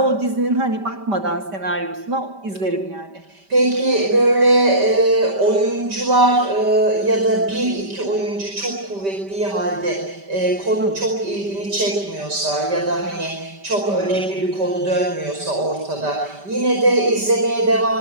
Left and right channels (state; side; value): late; left; 5.1 ms